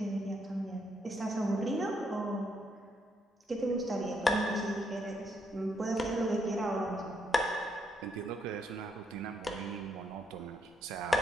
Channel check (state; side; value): normal; both; correlation 0.76